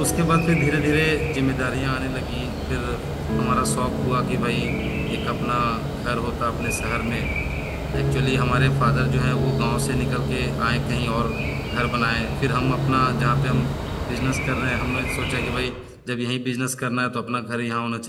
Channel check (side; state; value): both; identical; correlation 1.00